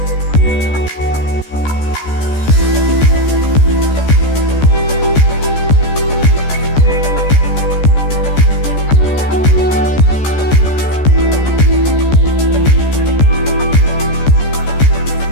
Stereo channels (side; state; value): right; late; 14 ms